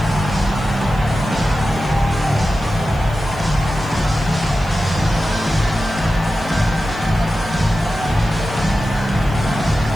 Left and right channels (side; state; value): right; noise; hiss, 24 dB below the sound